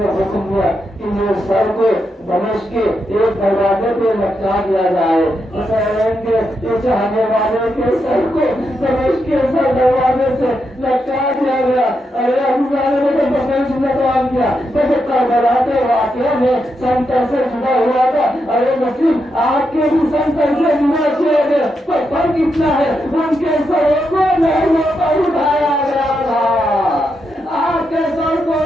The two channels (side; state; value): both; normal; correlation 0.83